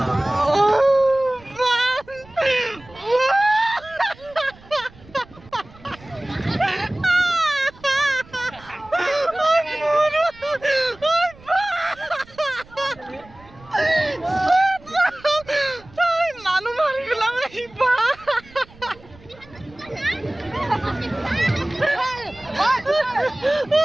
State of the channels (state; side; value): noise; right; rumble, 23 dB below the sound